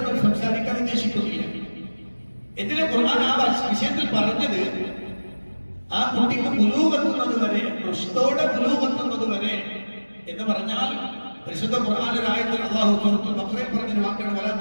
സംസാരിക്കാൻ ഉദ്ദേശിക്കുന്നില്ല. എന്തിനാ ഖുർആൻ ആ വിഷയത്തിൽ പറഞ്ഞത്? ആ കുട്ടിക്ക് ബുലൂഗെത്തുന്നത് വരെ, റുഷ്ദോടെ ബുലൂഗെത്തുന്നത് വരെ എന്ന് പറഞ്ഞാൽ പരിശുദ്ധ ഖുർആനിലെ ആയത്തിൽ അല്ലാഹു സൂറത്തുൽ ബഖറയിൽ പറഞ്ഞ വാക്കാണ് വലാ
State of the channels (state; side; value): inverted; both; correlation -1.00